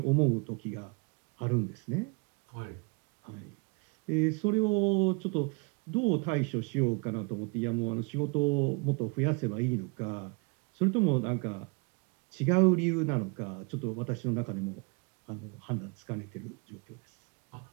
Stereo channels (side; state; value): left; quieter; 31.9 dB